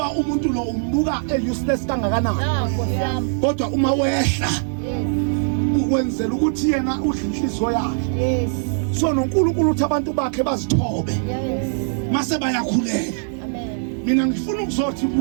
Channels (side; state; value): left; silent; digital silence